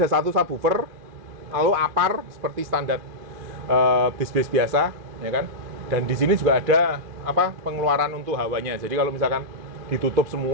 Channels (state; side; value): late; left; 2.5 ms